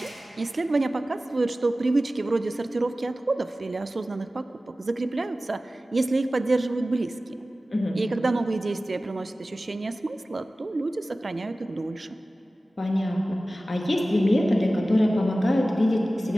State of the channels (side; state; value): both; normal; correlation 0.96